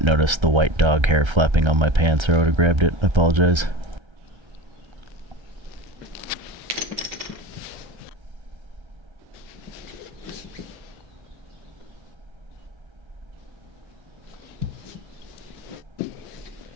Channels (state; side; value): late; left; 1.3 ms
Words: notice the white dog hair flapping on my pants, or I would have grabbed it. I apologize.